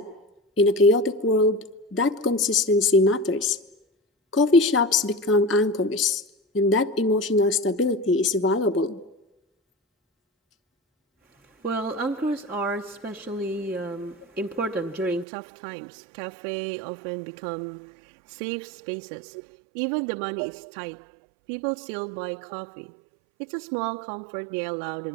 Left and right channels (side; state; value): left; drops out; at 15.2 s